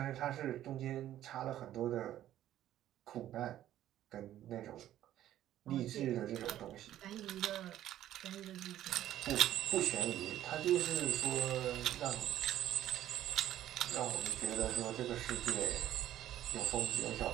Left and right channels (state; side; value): quieter; left; 12.5 dB